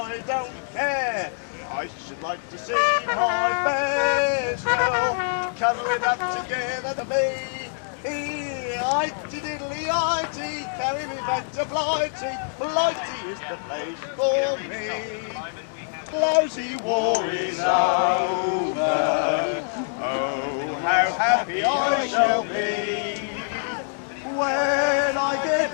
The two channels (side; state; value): right; silent; digital silence